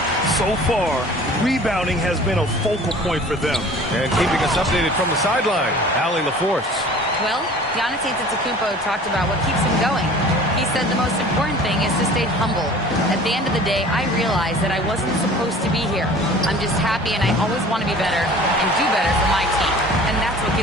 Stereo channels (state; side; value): normal; both; correlation 0.46